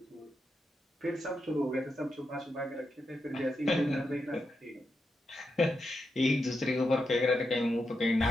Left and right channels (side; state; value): both; normal; correlation 0.86